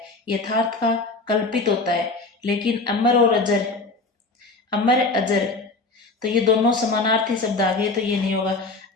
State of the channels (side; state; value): right; quieter; 3.5 dB